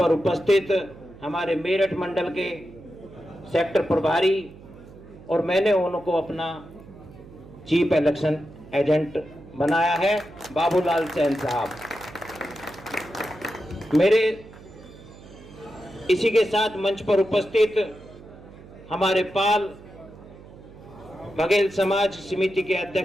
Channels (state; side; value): noise; right; hum, 19 dB below the sound